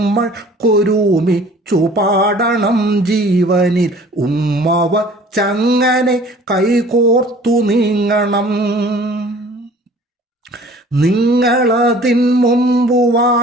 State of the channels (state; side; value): normal; both; correlation 0.49